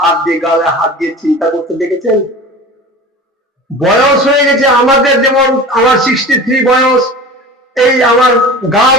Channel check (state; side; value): normal; both; correlation 0.36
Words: দিয়ে গালে হাত দিয়ে চিন্তা করতে দেখেছেন? বয়স হয়ে গেছে আমাদের, যেমন আমার 63 বয়স, এই আমার গাল